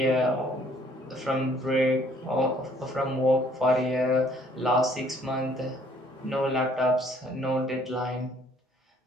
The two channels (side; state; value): both; normal; correlation 0.60